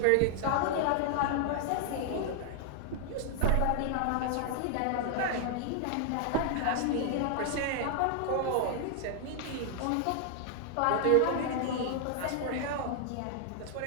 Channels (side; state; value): both; different; correlation 0.00